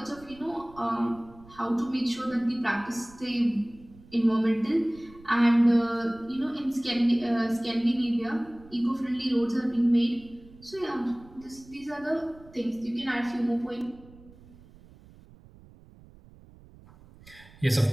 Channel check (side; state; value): right; noise; rumble, 23 dB below the sound